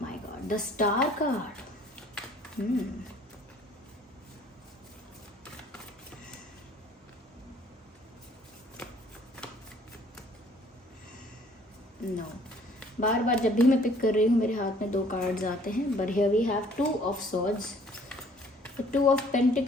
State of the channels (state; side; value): normal; both; correlation 0.57